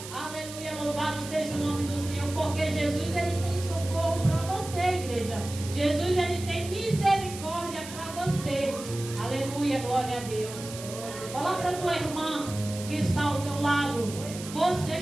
Aleluia, louvado seja o nome do Senhor, porque Jesus, Ele tem socorro para você, igreja. Jesus, Ele tem misericórdia para você. Aleluia, glória a Deus. Fala para tua irmã que está ao teu lado: você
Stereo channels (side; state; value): right; noise; hiss, 12 dB below the sound